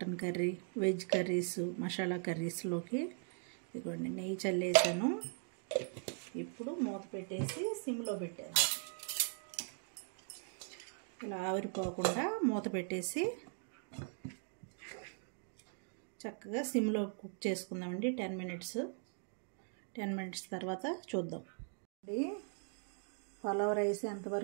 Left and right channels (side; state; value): left; silent; 51 dB below the other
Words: curry, veg curries, masala కర్రీస్లోకి. ఇదిగోండి నెయ్యి చల్లేసాను. ఇప్పుడు మూత పెట్టేసి సిమ్లో పెట్టాను. ఇలా ఆవిరిపోకుండా మూత పెట్టేసి చక్కగా సిమ్లో కుక్ చేసుకుందామండి 10 మినిట్స్. 10 మినిట్స్ తర్వాత చూద్దాం. పలావ్ రైస్